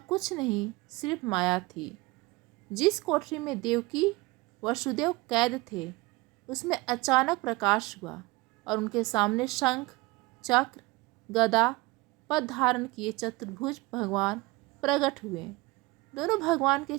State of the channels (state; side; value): quieter; left; 22.8 dB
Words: नहीं सिर्फ माया थी। जिस कोठरी में देवकी वसुदेव कैद थे, उसमें अचानक प्रकाश हुआ और उनके सामने शंख, चक्र, गदा, पद धारण किए चतुर्भुज भगवान प्रकट हुए। दोनों भगवान के